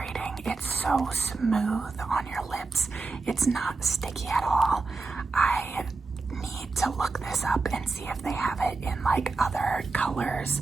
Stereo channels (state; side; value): quieter; left; 3.9 dB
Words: It's so smooth on your lips. It's not sticky at all. I need to look this up and see if they have it in like other colors.